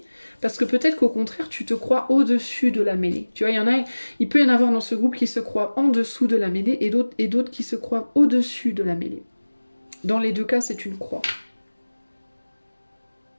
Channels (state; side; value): inverted; both; correlation -1.00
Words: Parce que peut-être qu'au contraire, tu te crois au-dessus de la mêlée. Tu vois, il peut y en avoir dans ce groupe qui se croient en dessous de la mêlée et d'autres qui se croient au-dessus de la mêlée. Dans les deux cas, c'est une croix.